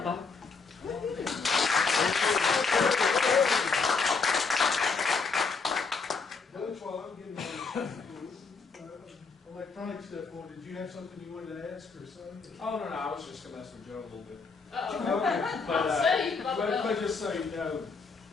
Bob. Coach, while I'm getting electronic stuff on, did you have something you wanted to ask or something? Oh, no, I was just going to mess with Joe a little bit. Okay. But just so you know,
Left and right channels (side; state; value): right; quieter; 4.7 dB